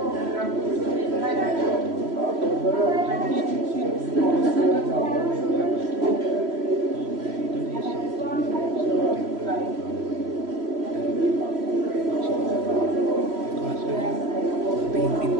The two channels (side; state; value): left; late; 3.0 ms